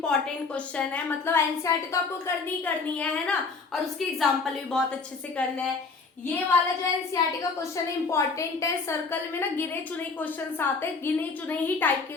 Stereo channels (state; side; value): quieter; right; 4.4 dB